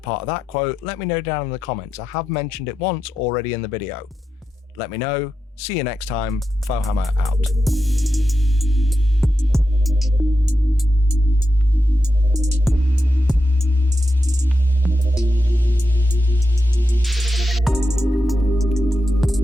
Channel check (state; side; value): normal; both; correlation 0.88